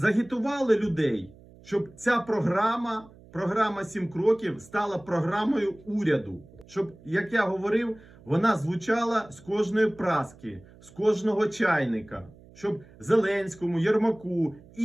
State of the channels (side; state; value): right; noise; hum, 23 dB below the sound